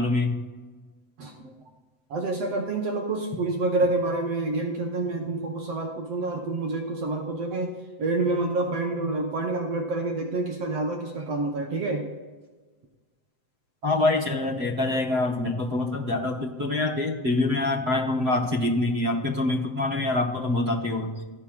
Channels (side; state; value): left; late; 7.8 ms